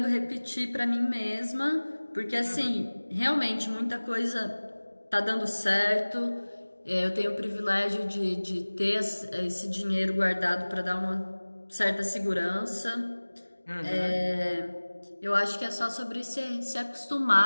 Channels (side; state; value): both; inverted; correlation -1.00